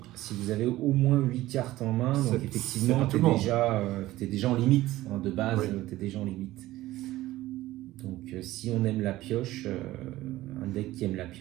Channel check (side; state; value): left; quieter; 16.5 dB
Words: Si vous avez au moins 8 cartes en main, donc effectivement, t'es déjà en limite. De base, oui. T'es déjà en limite. Donc si on aime la pioche, un deck qui aime la